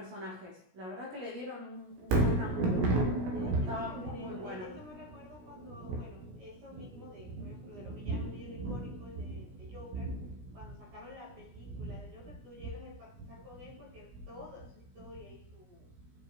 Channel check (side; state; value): left; late; 16 ms